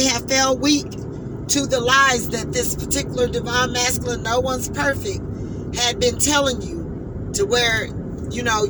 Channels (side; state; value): both; identical; correlation 1.00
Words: have fell weak to the lies that this particular divine masculine, no one's perfect, had been telling you, to where, you know,